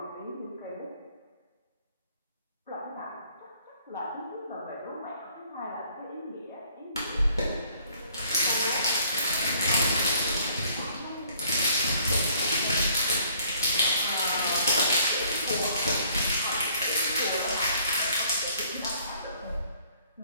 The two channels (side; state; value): both; inverted; correlation -0.61